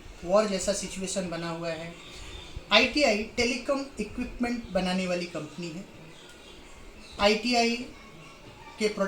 वॉर जैसा सिचुएशन बना हुआ है। ITI टेलीकॉम इक्विपमेंट बनाने वाली कंपनी है। ITI के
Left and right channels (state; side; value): identical; both; correlation 1.00